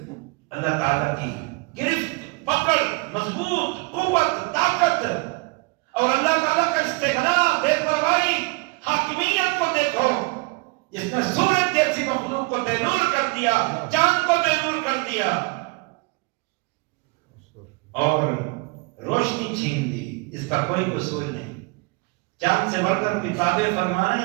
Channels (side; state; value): left; quieter; 27.6 dB